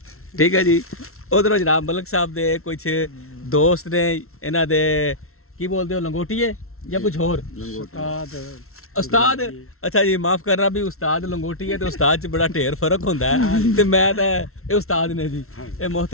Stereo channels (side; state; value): right; late; 0.62 ms